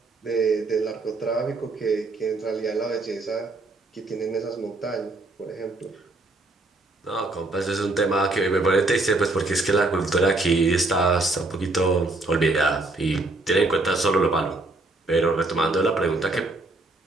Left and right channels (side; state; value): left; quieter; 3.1 dB